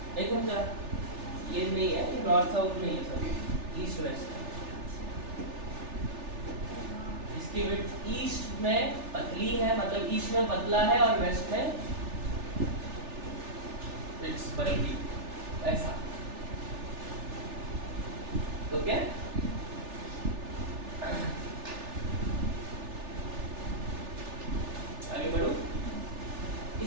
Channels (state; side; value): late; left; 3.4 ms